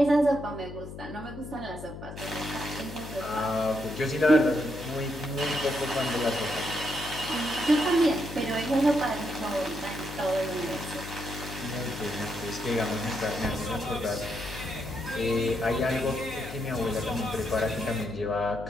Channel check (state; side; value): noise; left; hum, 11 dB below the sound